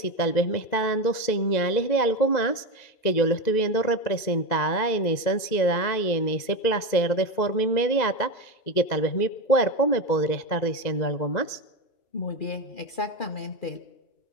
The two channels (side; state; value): right; late; 2.0 ms